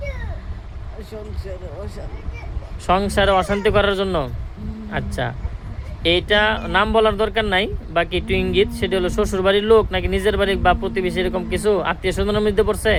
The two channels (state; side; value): identical; both; correlation 1.00